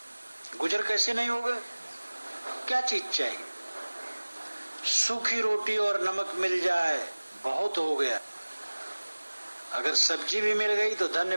गुजर कैसे नहीं होगा? क्या चीज चाहिए? सूखी रोटी और नमक मिल जाए बहुत हो गया, अगर सब्जी भी मिल गई तो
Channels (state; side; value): inverted; both; correlation -1.00